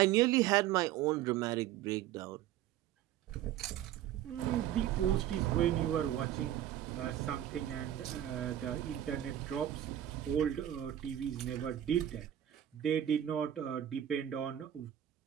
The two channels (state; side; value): quieter; left; 11.7 dB